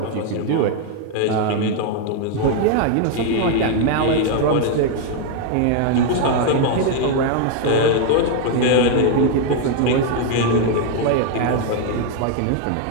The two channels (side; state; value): both; different; correlation 0.00